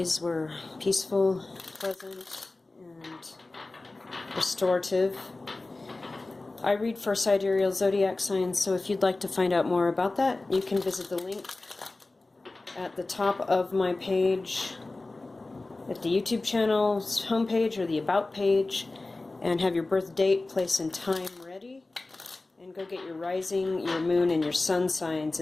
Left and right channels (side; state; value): right; quieter; 3.2 dB